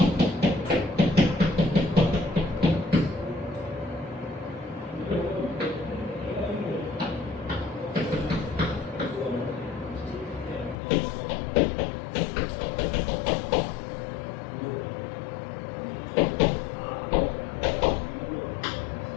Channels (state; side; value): drops out; right; at 10.8 s